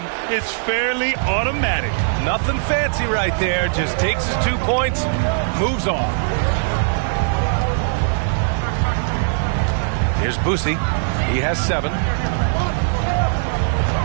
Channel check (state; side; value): silent; left; 55 dB below the other